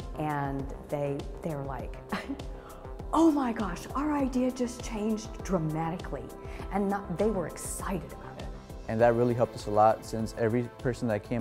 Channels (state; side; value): identical; both; correlation 1.00